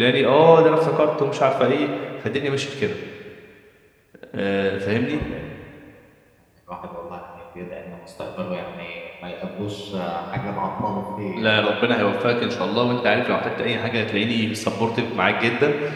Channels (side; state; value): both; identical; correlation 1.00